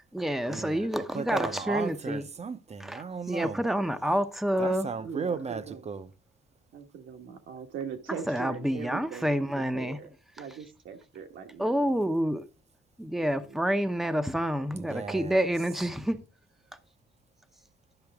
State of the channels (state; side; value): normal; both; correlation 0.86